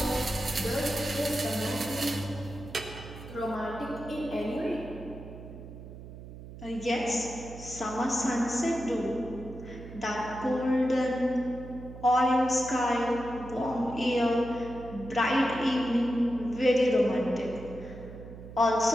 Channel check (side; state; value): right; noise; hum, 14 dB below the sound